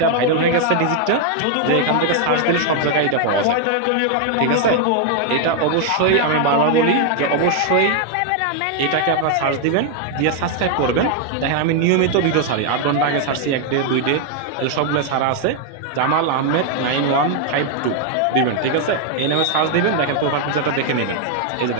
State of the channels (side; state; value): both; different; correlation 0.00